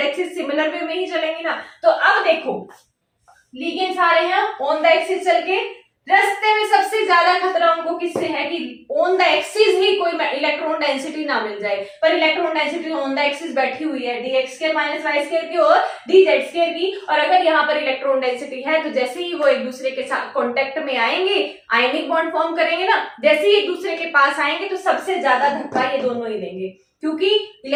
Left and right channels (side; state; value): both; identical; correlation 1.00